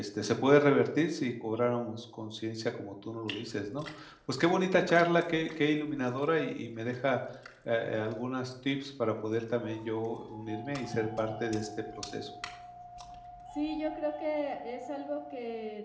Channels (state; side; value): identical; both; correlation 1.00